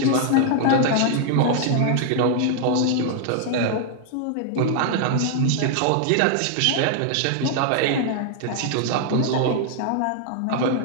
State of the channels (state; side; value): different; both; correlation 0.00